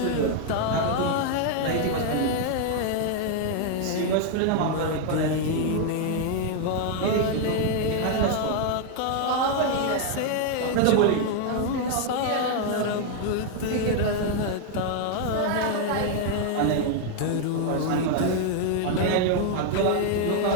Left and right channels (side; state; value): both; different; correlation 0.00